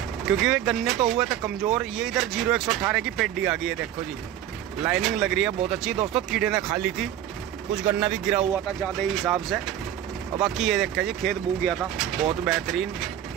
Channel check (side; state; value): left; quieter; 11.3 dB